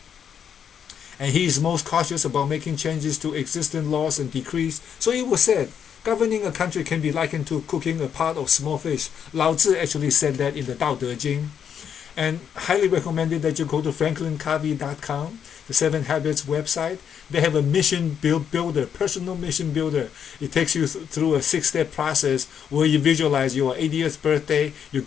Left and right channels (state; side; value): quieter; right; 8.1 dB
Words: and he is most cautious about making changes to existing laws and decrees. So it was said, governing a country can be likened to cooking a pot of small fish. Lao Tzu actually said that in the Dao Part3. And highly recommended that you go to franklincovey.com, the 7 Habits website. They have a mission builder, personal mission builder. It takes you through a 6-step process where you visualize your 80th birthday. You